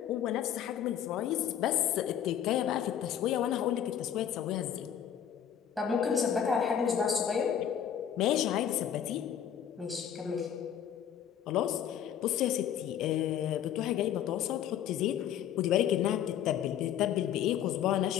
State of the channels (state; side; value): quieter; right; 9.6 dB